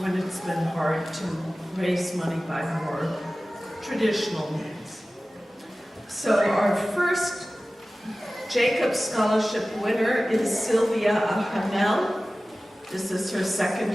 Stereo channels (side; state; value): both; normal; correlation 0.96